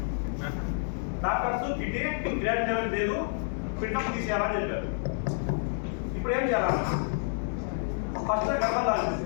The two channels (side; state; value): right; silent; digital silence